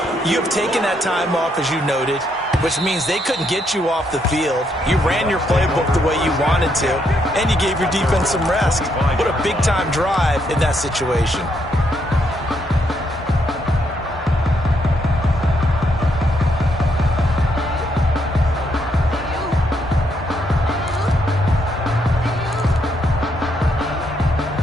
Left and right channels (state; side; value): normal; both; correlation 0.75